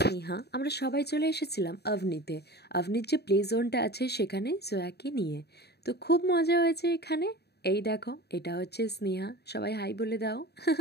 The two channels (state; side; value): late; right; 0.48 ms